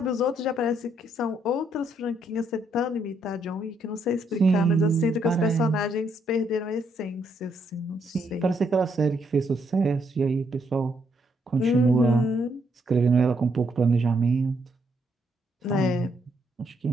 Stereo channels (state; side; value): normal; both; correlation 0.74